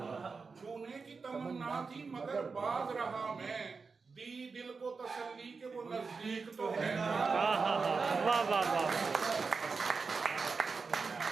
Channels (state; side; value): quieter; left; 4.7 dB